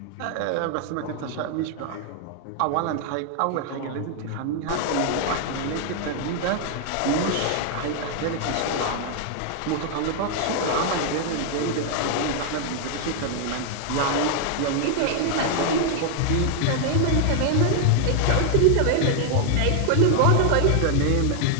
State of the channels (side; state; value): both; different; correlation 0.00